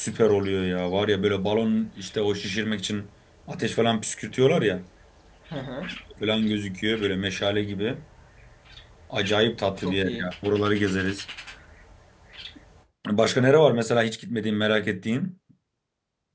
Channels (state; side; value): identical; both; correlation 1.00